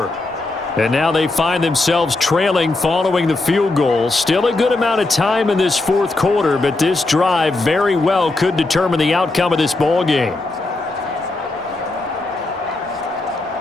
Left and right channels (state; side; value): quieter; right; 3.1 dB